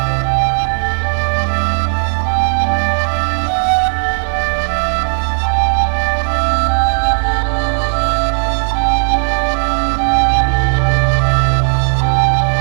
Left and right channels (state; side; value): silent; left; digital silence